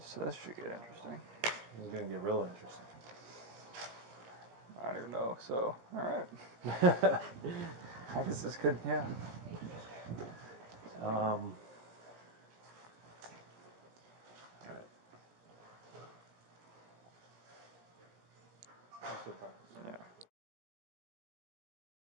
that should get interesting. It's gonna get real interesting. I don't even know. So, all right. I guess this could, yeah. All right. Yeah.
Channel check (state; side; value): late; left; 17 ms